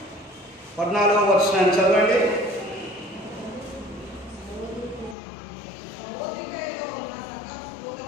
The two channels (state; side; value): drops out; right; at 5.2 s